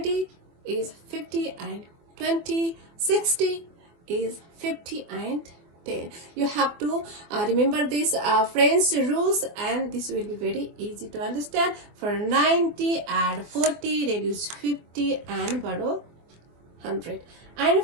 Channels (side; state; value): left; late; 24 ms